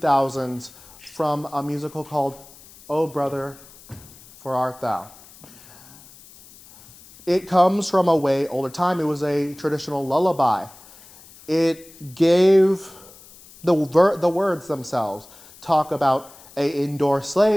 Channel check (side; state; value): left; noise; hiss, 22 dB below the sound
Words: from a musical called Oh Brother, For Art Thou. It comes from a way older time. It was a traditional lullaby. It gave the words themselves talk about an indoor